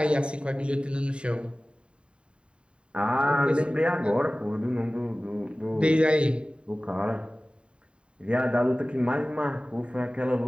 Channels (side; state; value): left; late; 0.054 ms